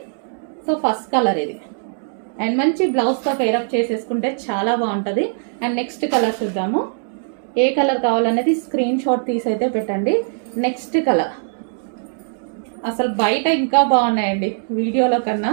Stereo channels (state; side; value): silent; left; digital silence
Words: సో ఫస్ట్ కలర్ ఇది. అండ్ మంచి బ్లౌజ్తో పేరప్ చేసేసుకుంటే చాలా బాగుంటుంది. అండ్ నెక్స్ట్ కలర్ చూద్దాము. ఏ కలర్ కావాలనేది స్క్రీన్ షాట్ తీసి అయితే పెట్టండి. నెక్స్ట్ కలర్ అసలు బయట ఇంకా బాగున్నాయండి, వీడియోలో కన్నా